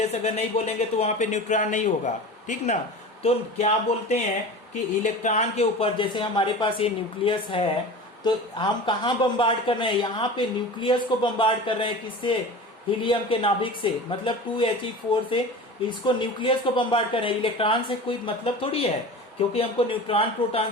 अगर नहीं बोलेंगे तो वहां पे न्यूट्रॉन नहीं होगा। ठीक ना? तो क्या बोलते हैं कि इलेक्ट्रॉन के ऊपर, जैसे हमारे पास ये न्यूक्लियस है, तो हम कहाँ बम्बार्ड कर रहे हैं? यहाँ पे न्यूक्लियस को बम्बार्ड कर रहे हैं। किससे? हीलियम के नाभिक से, मतलब 2He4 से इसको न्यूक्लियस को बम्बार्ड कर रहे हैं। इलेक्ट्रॉन से कोई मतलब थोड़ी है, क्योंकि हमको न्यूट्रॉन प्रोटॉन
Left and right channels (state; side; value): normal; both; correlation 0.34